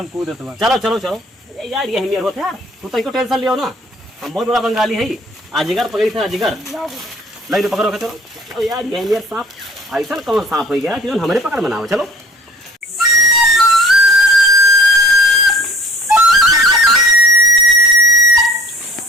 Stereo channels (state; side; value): normal; both; correlation 0.50